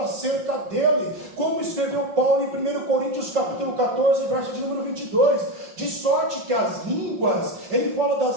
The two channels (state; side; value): late; left; 5.6 ms